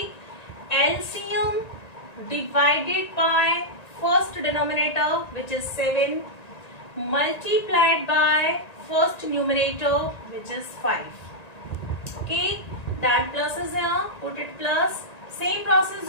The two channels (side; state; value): right; late; 1.9 ms